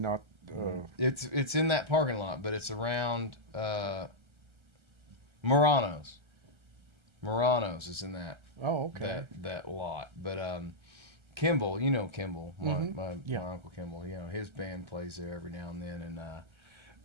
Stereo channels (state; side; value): late; left; 1.3 ms